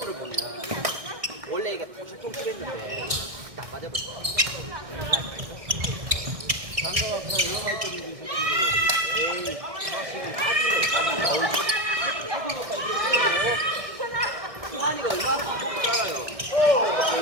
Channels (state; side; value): late; left; 1.6 ms